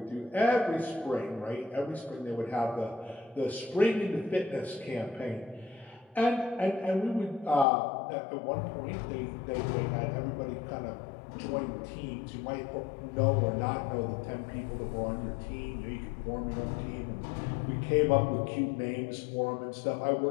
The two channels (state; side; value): drops out; right; at 7.7 s